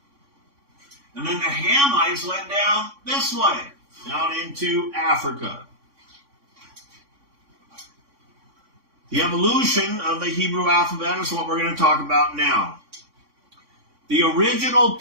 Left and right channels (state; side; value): late; left; 3.6 ms